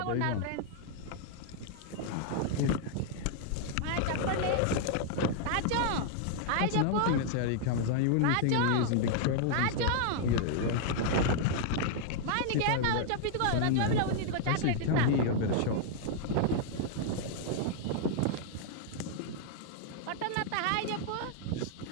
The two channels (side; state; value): both; different; correlation -0.01